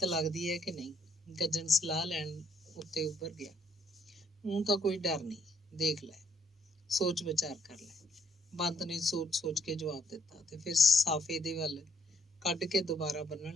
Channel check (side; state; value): both; normal; correlation 0.69